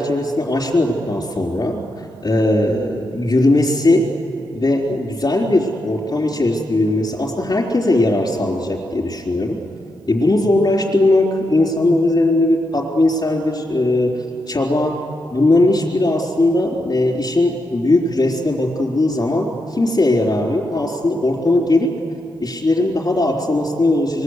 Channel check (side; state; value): both; normal; correlation 0.84